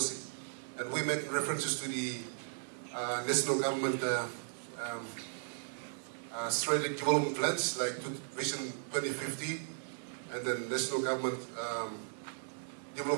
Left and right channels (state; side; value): silent; left; digital silence